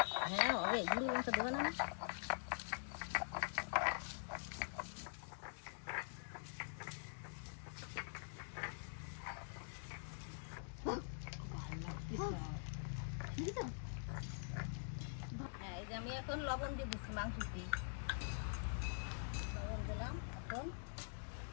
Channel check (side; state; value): right; silent; digital silence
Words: হ্যাঁ হবে, গুঁড়ো লঙ্কা দেবে না? হ্যাঁ এই যে আমি এখন লবণ দিয়ে দিচ্ছি মাংসটি, লবণ দিলাম। এখন